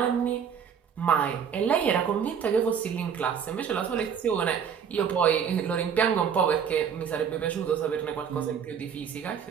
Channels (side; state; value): left; quieter; 7.5 dB